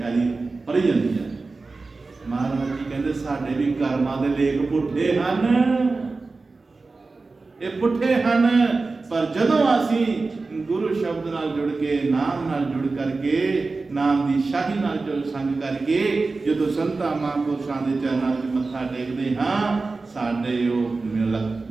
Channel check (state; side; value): quieter; left; 3.8 dB